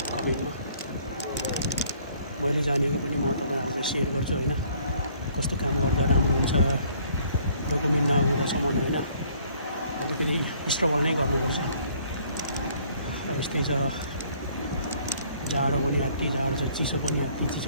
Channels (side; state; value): both; inverted; correlation -0.60